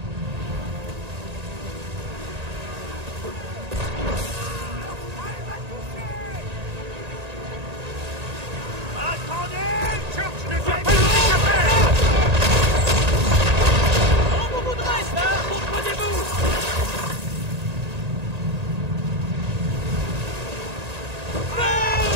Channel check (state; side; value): late; left; 1.8 ms